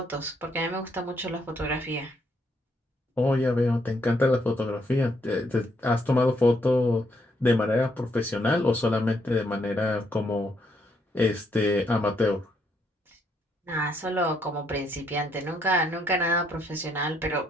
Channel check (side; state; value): both; normal; correlation 0.73